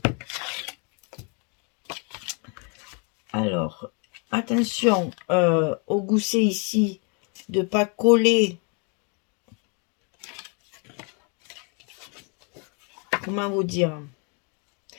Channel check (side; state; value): right; quieter; 35.8 dB